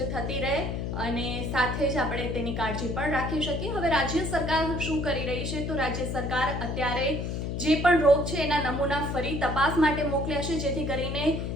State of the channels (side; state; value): left; noise; hum, 3 dB below the sound